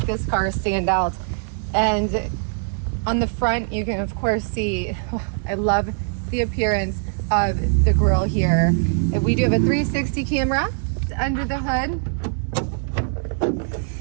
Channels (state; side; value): silent; left; digital silence